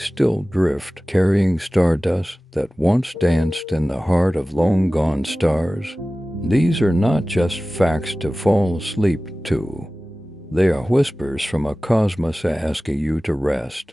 still drift, carrying stardust that once danced in the heart of long-gone stars? These are not just facts to fall asleep to. They are whispers from a cosmos asking you to rest.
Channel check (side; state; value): both; normal; correlation 0.97